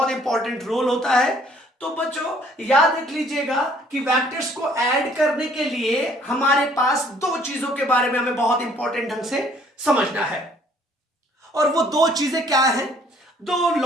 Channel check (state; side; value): normal; both; correlation 0.60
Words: इंपॉर्टेंट रोल होता है। तो बच्चों याद रख लीजिएगा कि वेक्टर्स को ऐड करने के लिए हमारे पास दो चीजों के बारे में हमें बहुत इंपॉर्टेंट ढंग से समझना है, और वो दो चीजें क्या हैं? दो